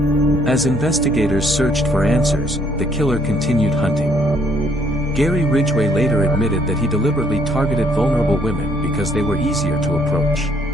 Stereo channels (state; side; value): noise; left; hum, 21 dB below the sound